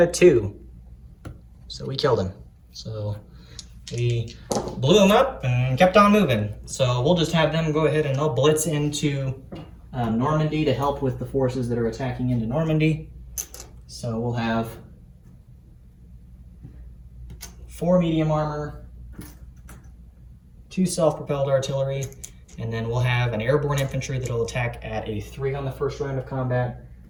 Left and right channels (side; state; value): both; identical; correlation 1.00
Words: a 2. So we killed him. So we blew him up and kept on moving. So we'll just have them go ahead and they'll blitz into Normandy to help with the forces that are attacking into Normandy. So we'll have 4 medium armor, 2 self-propelled artillery, and then we'll have an airborne infantry that'll attack at a 3 on the first round of combat,